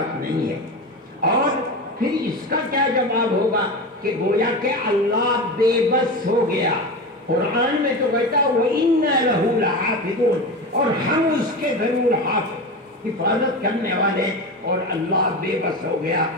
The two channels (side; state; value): both; normal; correlation 0.24